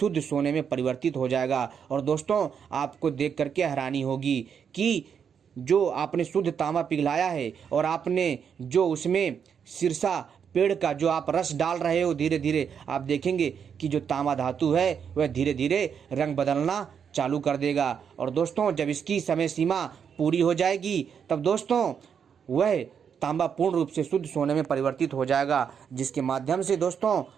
सोने में परिवर्तित हो जाएगा। और दोस्तों, आपको देख करके हैरानी होगी कि जो आपने शुद्ध तांबा पिघलाया है और आपने जो उसमें सिरसा पेड़ का जो आप रस डाल रहे हो, धीरे धीरे आप देखेंगे कि जो तांबा धातु है वह धीरे धीरे रंग बदलना चालू कर देगा। और दोस्तों, जब इसकी समय सीमा पूरी हो जाएगी तब दोस्तों वह तांबा पूर्ण रूप से शुद्ध सोने में परिवर्तित हो जाएगा, जिसके माध्यम से दोस्तों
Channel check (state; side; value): quieter; left; 7.3 dB